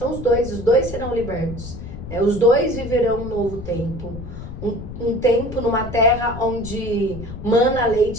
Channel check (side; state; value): left; noise; rumble, 10 dB below the sound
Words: os dois serão libertos, né? Os dois viverão um novo tempo, um tempo numa terra onde mana